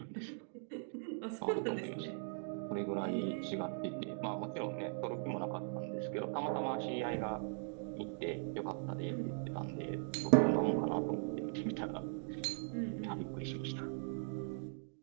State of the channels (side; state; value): left; silent; digital silence